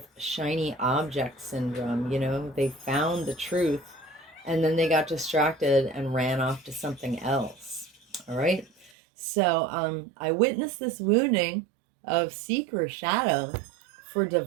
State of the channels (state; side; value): drops out; left; at 8.9 s